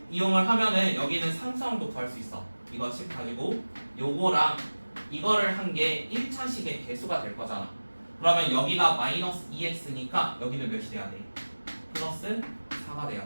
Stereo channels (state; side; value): inverted; both; correlation -1.00